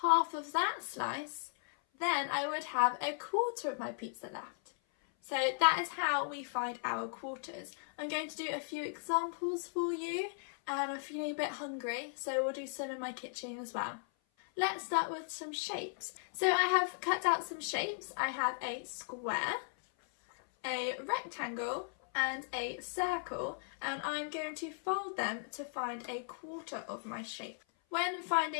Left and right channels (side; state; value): right; silent; 53 dB below the other